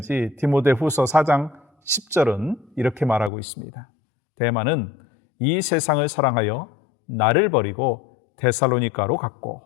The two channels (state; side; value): drops out; right; at 3.3 s